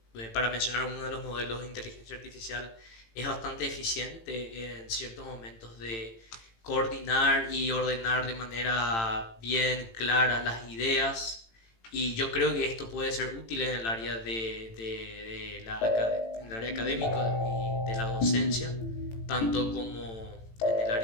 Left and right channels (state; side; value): late; right; 18 ms